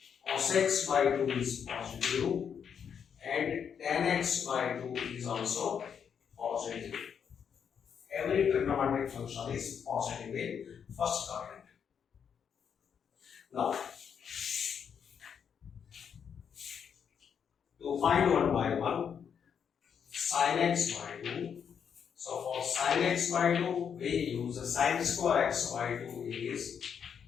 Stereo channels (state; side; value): quieter; right; 7.4 dB